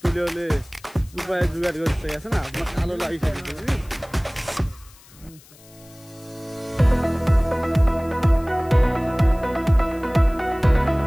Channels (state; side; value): noise; left; hiss, 25 dB below the sound